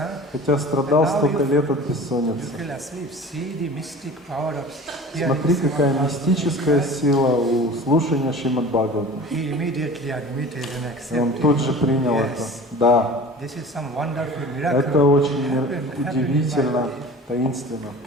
хотя страдал столько лет от You бессонницы. fell asleep. See the mystic power of hearing Смотри, какая Bhagavatam мистическая class. сила у слушания Шримад Бхагавата. He immediately admitted and И он accepted. тут же принял это. Yes, Да, this is some wonderful miracle. это очень Happened in my удивительно, life. таинственно.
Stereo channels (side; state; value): both; normal; correlation 0.40